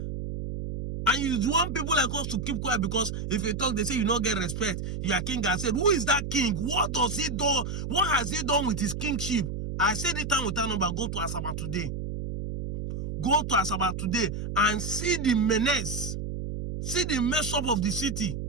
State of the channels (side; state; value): right; noise; hum, 5 dB below the sound